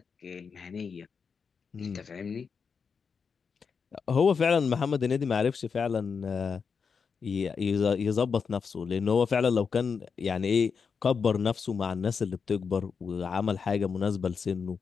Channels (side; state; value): right; quieter; 5.8 dB